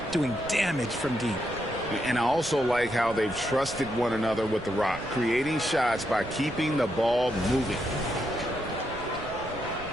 doing damage from deep. And I also like how they've trusted one another with the rock, creating shots by keeping the ball moving.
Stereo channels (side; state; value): right; noise; rumble, 16 dB below the sound